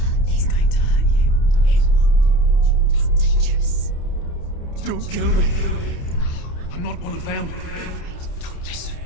It's going to hurt you. It's dangerous. Don't kill me. I'm not one of them. Don't listen.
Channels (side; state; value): right; late; 29 ms